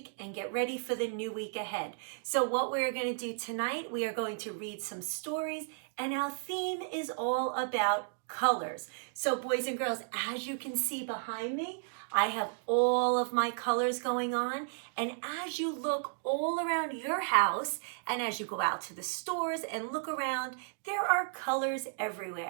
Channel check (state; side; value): silent; left; digital silence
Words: and get ready for the new week ahead. So what we're going to do tonight, we are going to read some stories, and our theme is all about colors. So boys and girls, as you can see behind me, I have all of my colors going on. And as you look all around your house and as you go out to the stores and look around, there are colors